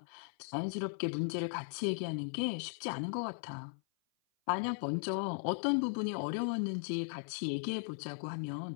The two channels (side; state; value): right; silent; 53 dB below the other